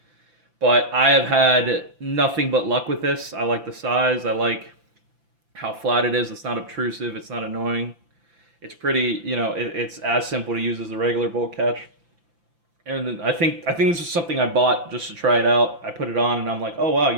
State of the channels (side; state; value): left; late; 5.9 ms